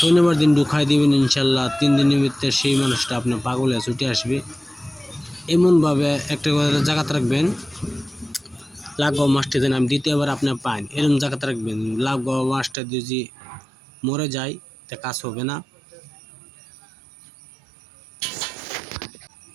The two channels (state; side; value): drops out; left; at 12.8 s